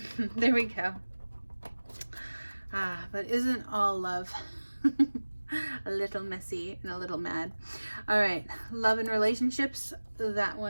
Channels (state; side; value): inverted; both; correlation -1.00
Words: there we go. But isn't all love a little messy and a little mad? All right, love and relationships, that